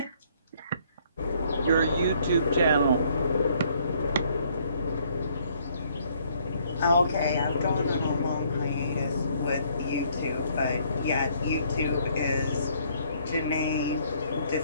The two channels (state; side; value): inverted; both; correlation -0.65